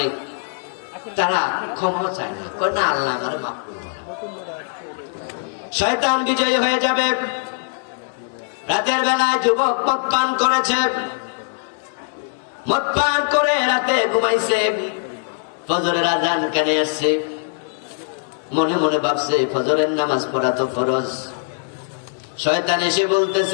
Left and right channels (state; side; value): silent; right; digital silence